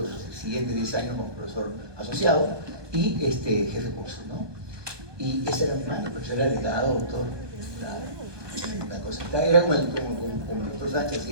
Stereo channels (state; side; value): late; left; 1.2 ms